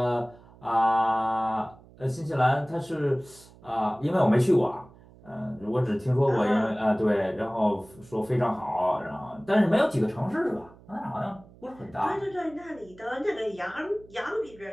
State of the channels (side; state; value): right; noise; hum, 24 dB below the sound